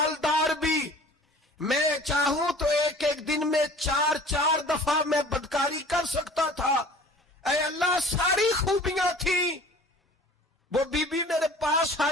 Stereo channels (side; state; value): both; normal; correlation 0.46